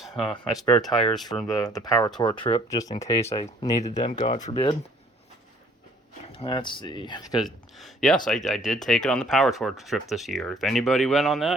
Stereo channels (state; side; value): normal; both; correlation 0.58